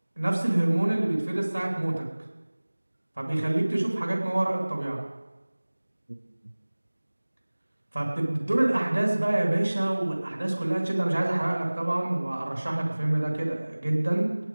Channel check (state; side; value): inverted; both; correlation -1.00